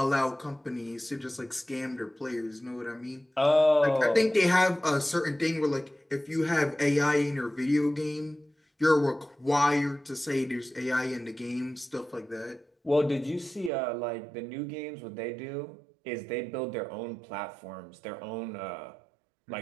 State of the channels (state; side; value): drops out; left; at 13.7 s